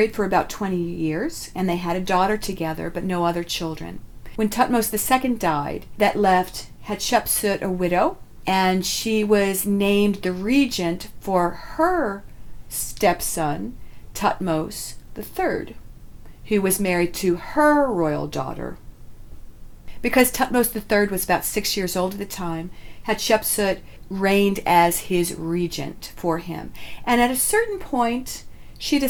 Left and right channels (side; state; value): both; identical; correlation 1.00